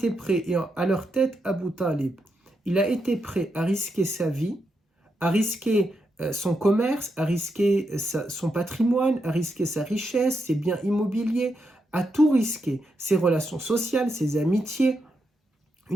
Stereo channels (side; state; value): both; normal; correlation 0.83